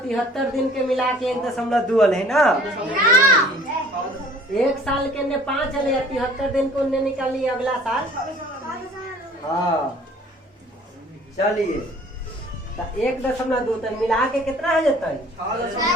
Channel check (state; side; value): normal; both; correlation 0.52